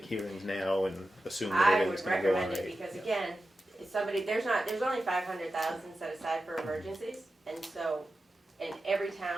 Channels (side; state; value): both; normal; correlation 0.92